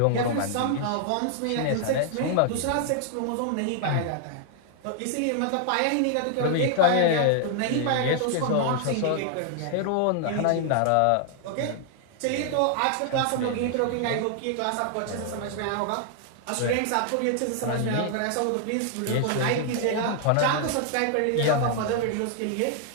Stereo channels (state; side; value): different; both; correlation 0.00